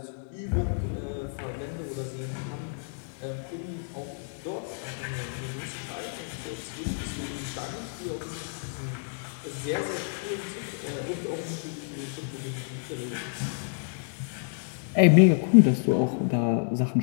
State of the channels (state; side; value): silent; right; digital silence